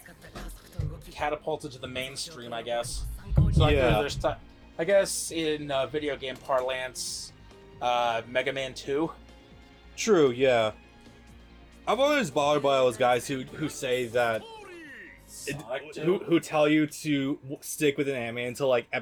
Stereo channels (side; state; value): both; identical; correlation 1.00